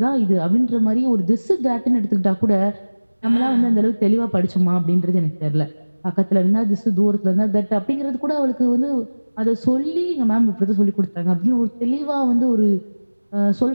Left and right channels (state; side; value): inverted; both; correlation -1.00